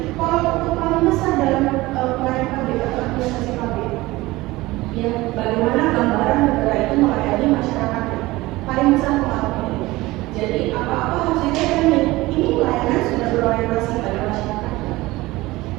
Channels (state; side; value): quieter; left; 19.5 dB